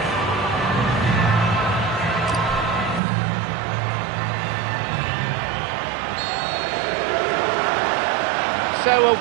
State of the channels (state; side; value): drops out; left; at 3.0 s